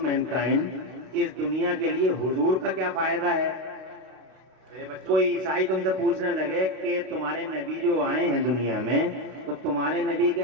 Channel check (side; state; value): left; late; 32 ms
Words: इस दुनिया के लिए हुजूर का क्या फायदा है? कोई ईसाई तुमसे पूछने लगे कि तुम्हारे नबी जो आए हैं दुनिया में, तो तुम्हारे नबी के